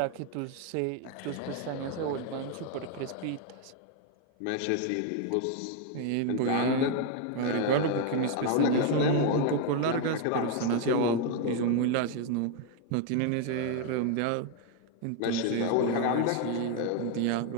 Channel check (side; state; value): both; different; correlation 0.00